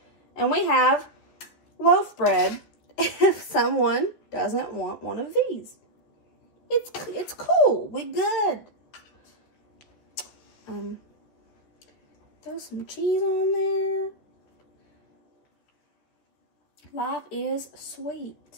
And we have loaf bread if someone doesn't want one of these. It's cool. We good. Throw some cheese on there. Life is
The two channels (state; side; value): late; right; 14 ms